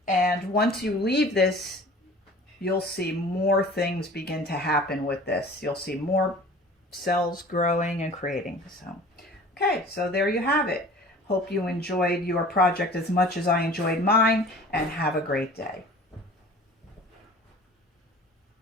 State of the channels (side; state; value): both; normal; correlation 0.45